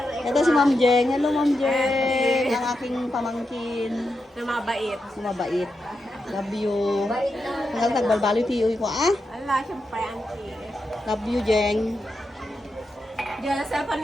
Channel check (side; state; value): both; normal; correlation 0.87